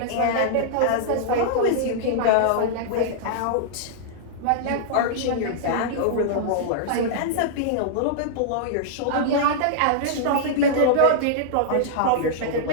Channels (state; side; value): different; both; correlation -0.02